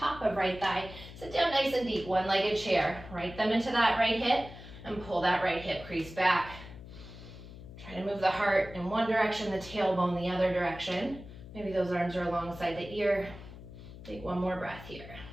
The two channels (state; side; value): noise; left; hum, 15 dB below the sound